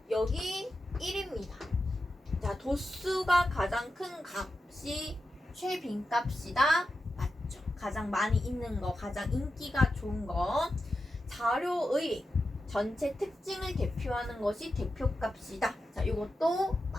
여기 1입니다. 자, 도수가 가장 큰 값이 최빈값이다. 맞죠? 가장 많이 있는 거, 가장 인기가 좋은 거. 자료의 전체 특징을 대표하는 것이 대표값이다. 자, 이것도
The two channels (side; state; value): both; normal; correlation 0.90